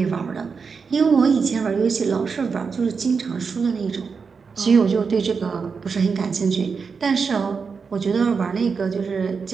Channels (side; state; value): left; quieter; 5.4 dB